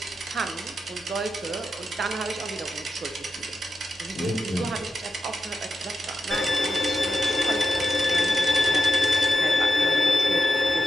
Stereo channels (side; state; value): both; normal; correlation 0.89